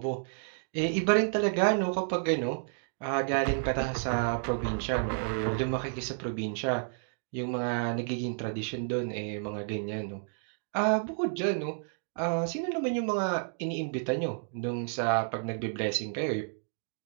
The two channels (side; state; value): left; silent; digital silence